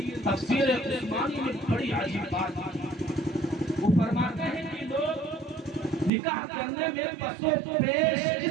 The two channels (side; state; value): left; drops out; at 6.1 s